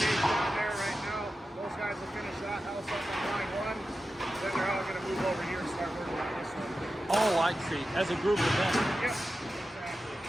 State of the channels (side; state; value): both; normal; correlation 0.92